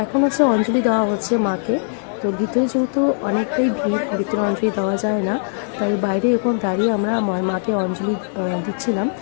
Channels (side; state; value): right; silent; digital silence